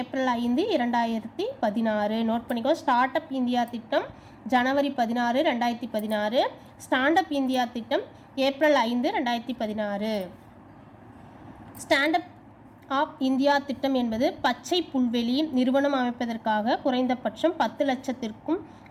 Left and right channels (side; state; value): both; identical; correlation 1.00